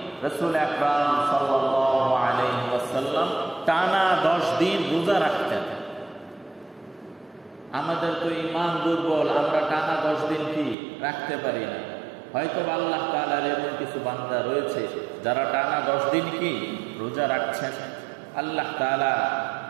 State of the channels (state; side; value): drops out; left; at 10.8 s